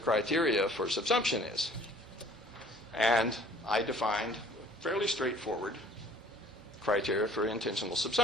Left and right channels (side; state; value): both; normal; correlation 0.53